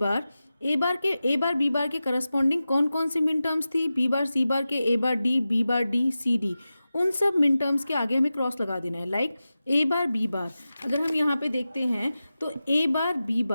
बार के करस्पॉन्डिंग कौन कौन सी मिन टर्म्स थी, बी बार सी बार के, ए बार डी सी डी। उन सब मिन टर्म्स के आगे हमें क्रॉस लगा देना है। लाइक ए बार बी बार, अगर हम यहाँ पे देखते हैं तो ए बार बी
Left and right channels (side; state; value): both; inverted; correlation -0.94